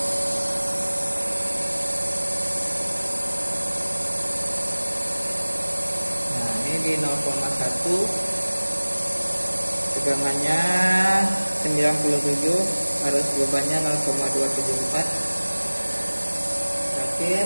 Nah, ini di 0,1. Tegangannya 97, harus bebannya 0,274.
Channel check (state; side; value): inverted; both; correlation -1.00